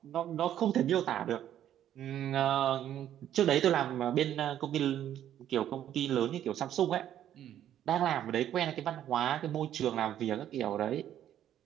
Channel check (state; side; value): quieter; left; 11.1 dB